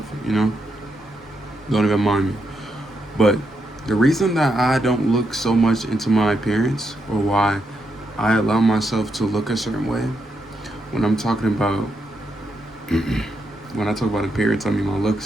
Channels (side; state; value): both; normal; correlation 0.82